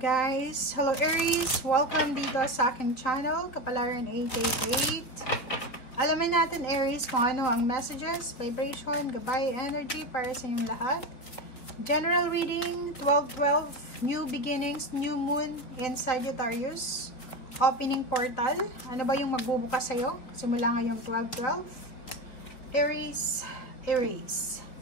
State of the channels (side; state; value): right; late; 4.2 ms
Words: Hello Aries! Welcome dito sa aking channel, Kapalaran 888. Alamin natin Aries kung ano ang messages, vibration, gabay, energy para sa inyong lahat. General reading, 12-12, new beginnings, new moon in Sagittarius. Opening portal, ano ba yung magbubukas sa'yo? Simula ngayong 12-12. Aries, Aries.